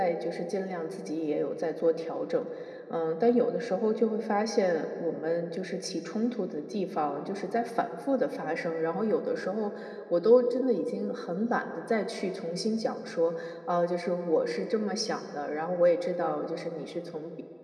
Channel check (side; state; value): both; identical; correlation 1.00